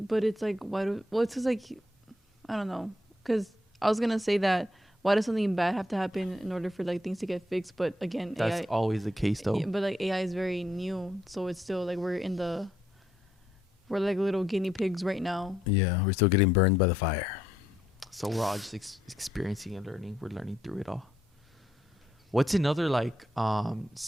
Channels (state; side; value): normal; both; correlation 0.75